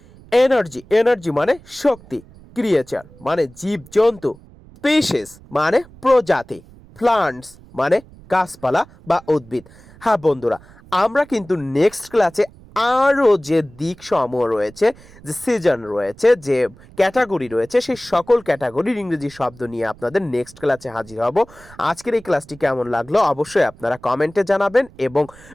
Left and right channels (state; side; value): noise; right; rumble, 23 dB below the sound